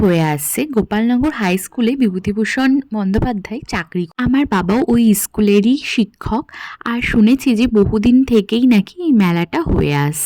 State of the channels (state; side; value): identical; both; correlation 1.00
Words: হয়ে আসছে। গোপালনগর হাই স্কুলে বিভূতিভূষণ বন্দ্যোপাধ্যায় চাকরি, আমার বাবাও ওই স্কুলেরই শিক্ষক। আর শুনেছি যে বহুদিন থেকেই নাকি এই মেলাটা হয়ে